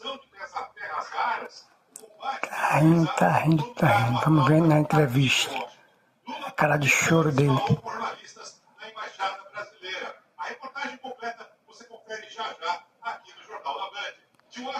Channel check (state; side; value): identical; both; correlation 1.00